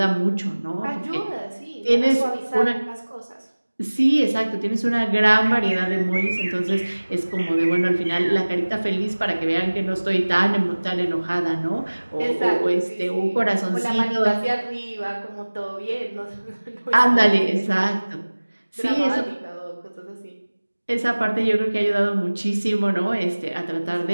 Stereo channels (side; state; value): both; inverted; correlation -1.00